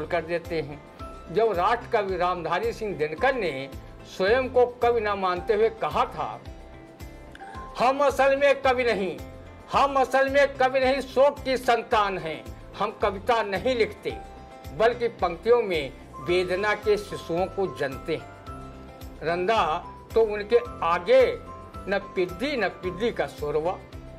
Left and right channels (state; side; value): identical; both; correlation 1.00